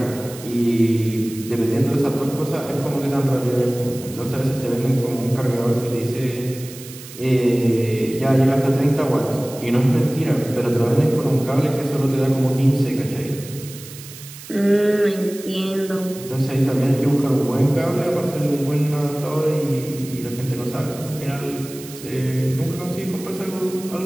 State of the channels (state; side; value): noise; right; hiss, 15 dB below the sound